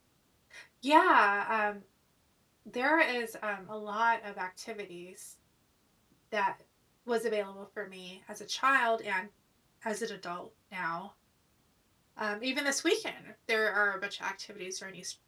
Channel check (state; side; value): identical; both; correlation 1.00